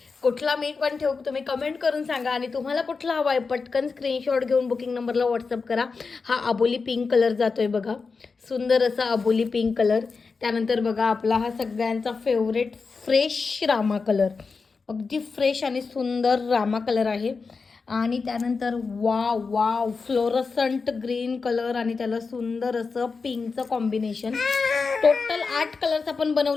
कुठला मी पण ठेवू तुम्ही कमेंट करून सांगा. आणि तुम्हाला कुठला हवा आहे पटकन स्क्रीनशॉट घेऊन बुकिंग नंबरला व्हॉट्सअप करा. हा अबोली पिंक कलर जातोय बघा, सुंदर असा अबोली पिंक कलर. त्यानंतर बघा आपला हा सगळ्यांचा फेवरेट फ्रेश रामा कलर, अगदी फ्रेश आणि सुंदर रामा कलर आहे. आणि त्यानंतर wow wow fluorescent green colour आणि त्याला सुंदर असं पिंकचं कॉम्बिनेशन. टोटल 8 कलर्स आपण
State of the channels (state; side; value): quieter; right; 4.7 dB